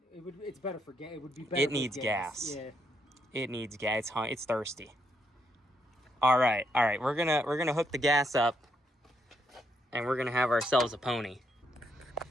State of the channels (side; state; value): both; normal; correlation 0.77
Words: It's better for gas. It would be better. It needs gas. Yeah. It needs gas. It's thirsty. All right. We're gonna hook the gas up, and we're gonna have ourselves a pony.